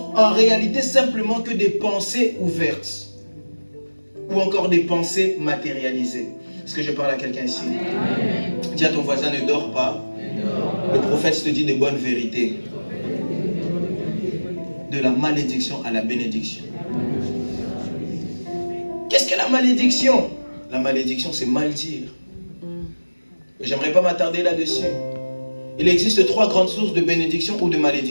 en réalité simplement que des pensées ouvertes. ou encore des pensées matérialisées. Est-ce que je parle à quelqu'un ici? Amen. Dis à ton voisin, ne dors pas. Le prophète te dit de bonnes vérités. De la malédiction à la bénédiction. Qu'est-ce que la malédiction? La malédiction, c'est mal dire. J'aimerais pas m'attarder là-dessus. Il existe 3 grandes sources de bénédiction ou de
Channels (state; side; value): inverted; both; correlation -1.00